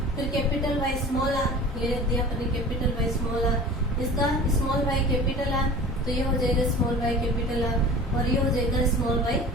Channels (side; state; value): both; normal; correlation 0.40